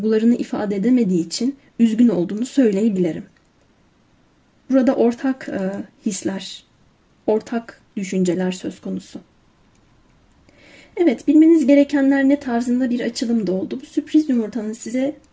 ifade edemediği için üzgün olduğunu söyleyebilirim. Burada ortak hisler, ortak düşünceler söz konusu. Evet, bilmeniz gerekenler ne tarzında bir açılım da oldu. Bu sürpriz yumurtanın size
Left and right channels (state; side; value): identical; both; correlation 1.00